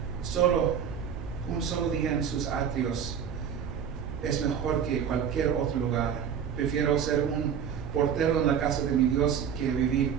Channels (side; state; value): left; quieter; 8.0 dB